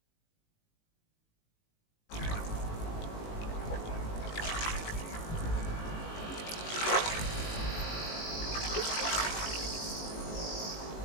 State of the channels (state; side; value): late; right; 19 ms